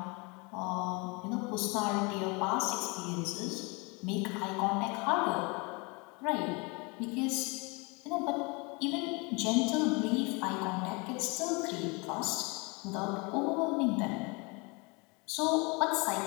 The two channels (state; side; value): quieter; right; 29.1 dB